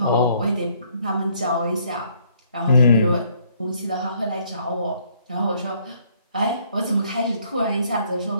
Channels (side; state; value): both; inverted; correlation -0.66